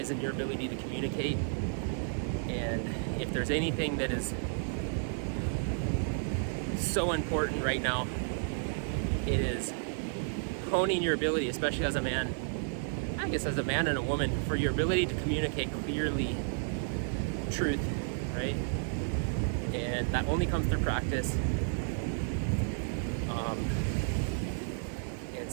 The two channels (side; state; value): left; silent; 56 dB below the other